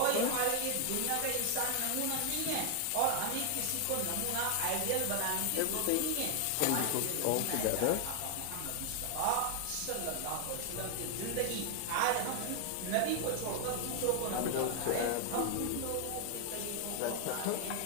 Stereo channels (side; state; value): both; different; correlation 0.00